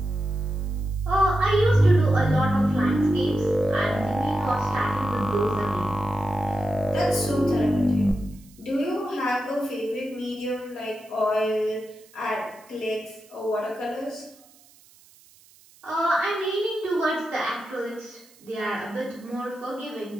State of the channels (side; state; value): right; noise; hiss, 27 dB below the sound